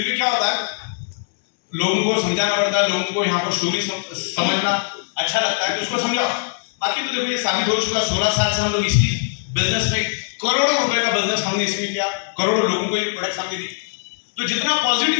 भी क्या होता है, लोगों को समझाना पड़ता है, लोगों को यहाँ पर स्टोरी समझना अच्छा लगता है तो उसको समझाओ। बाकी तो देखो ये साबित हो चुका, 16 साल से हम लोग इसी बिजनेस में करोड़ों रुपए का बिजनेस हमने इसमें किया, करोड़ों लोगों को ये प्रोडक्ट हमने दी। तो जितना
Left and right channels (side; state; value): right; silent; digital silence